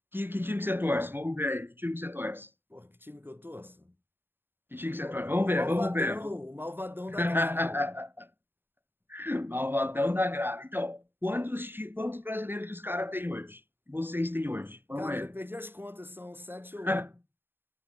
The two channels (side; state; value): left; late; 0.10 ms